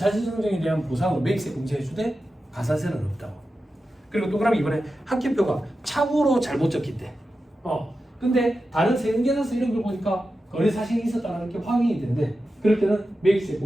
대한 보상으로 매입세 공제해주되 가산세는 없다고. 그리고 동그라미 2번에 학계표가 착오로 잘못 적힌대. 근데 다른 세금계산서 이런 걸 보니까 거래 사실이 있었다는 게 확인이 된대. 그럴 때는 매입세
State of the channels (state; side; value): normal; both; correlation 0.92